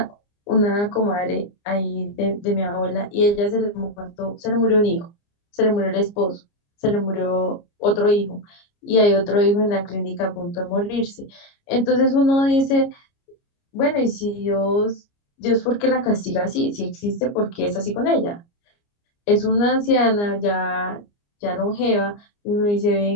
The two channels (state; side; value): late; right; 29 ms